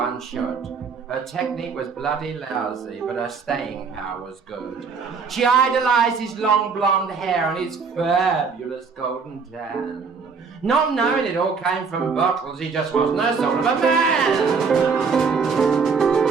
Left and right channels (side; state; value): left; quieter; 5.3 dB